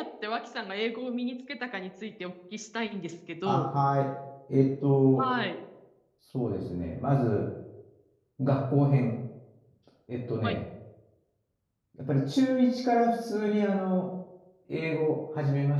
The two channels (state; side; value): identical; both; correlation 1.00